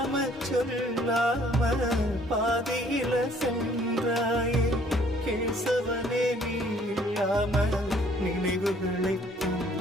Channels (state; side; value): normal; both; correlation 0.60